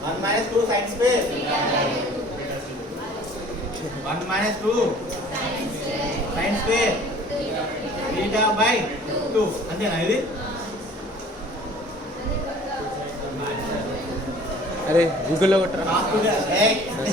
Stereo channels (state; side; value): normal; both; correlation 0.49